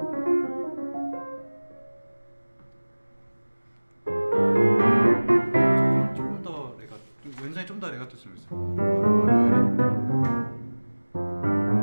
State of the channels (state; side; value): inverted; both; correlation -1.00